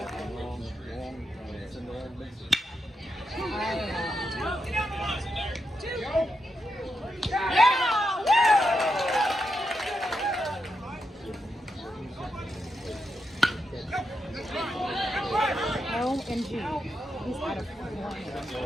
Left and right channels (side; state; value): both; normal; correlation 0.85